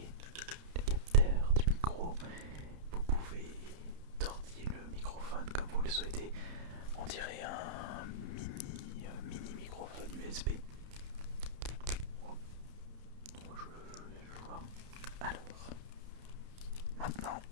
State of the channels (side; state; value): left; late; 31 ms